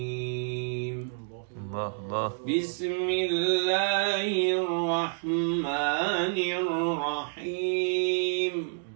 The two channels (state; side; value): silent; left; digital silence